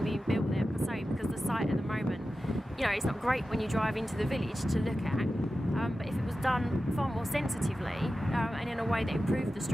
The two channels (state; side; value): normal; both; correlation 0.93